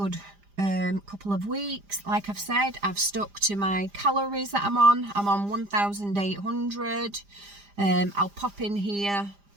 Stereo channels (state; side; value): late; left; 5.0 ms